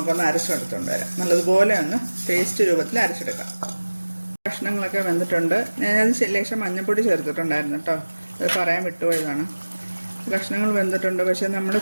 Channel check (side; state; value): both; inverted; correlation -1.00